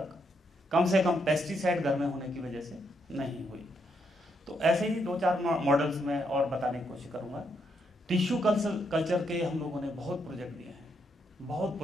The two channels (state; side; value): normal; both; correlation 0.77